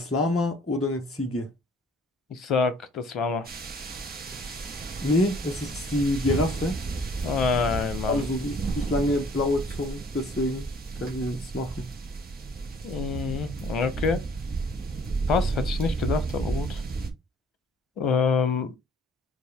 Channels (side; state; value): both; normal; correlation 0.57